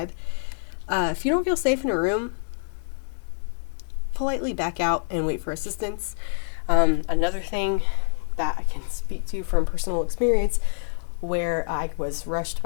If you don't feel safe in a room, politely back out and wait for assistance. Another thing that I can speak to from personal experience where I was rushed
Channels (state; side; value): silent; right; digital silence